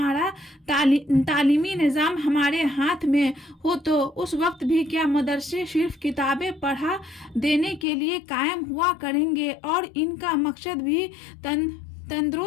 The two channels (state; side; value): drops out; right; at 7.9 s